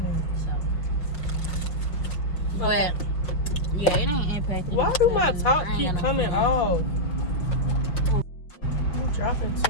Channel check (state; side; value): late; right; 5.3 ms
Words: So, but yeah, it ain't impacting. Why do my because top I ain't keep got no coming friends. off? I'm dropping